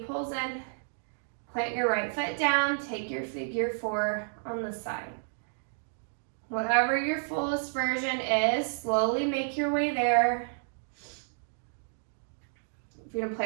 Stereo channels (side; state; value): left; silent; digital silence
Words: pulls in. Plant your right foot down. Take your figure 4 on the side. Whatever your fullest version is, slowly make your way there. If you're